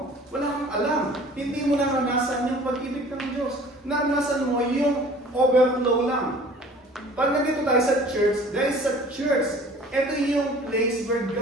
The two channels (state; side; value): normal; both; correlation 0.48